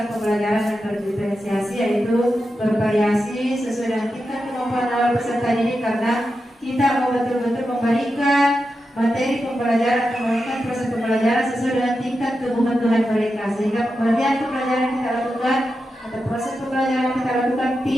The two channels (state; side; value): normal; both; correlation 0.89